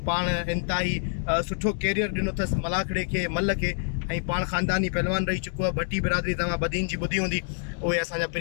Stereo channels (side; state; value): right; silent; digital silence